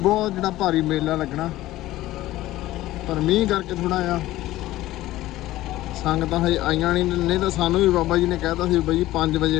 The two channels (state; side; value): quieter; right; 16.0 dB